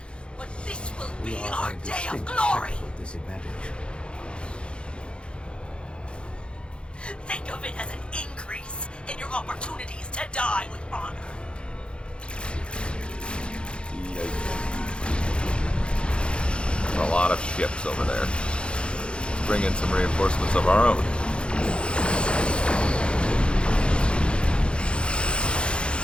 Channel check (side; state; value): right; late; 0.056 ms